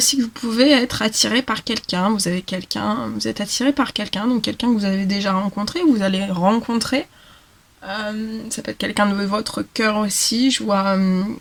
que vous pouvez être attiré par quelqu'un. Vous êtes attiré par quelqu'un, donc quelqu'un que vous avez déjà rencontré, ou vous allez rencontrer. Ça peut être quelqu'un de votre cœur aussi. Je vois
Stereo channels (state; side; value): identical; both; correlation 1.00